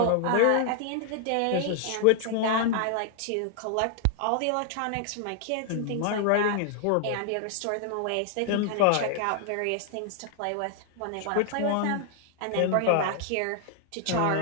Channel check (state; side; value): different; both; correlation 0.00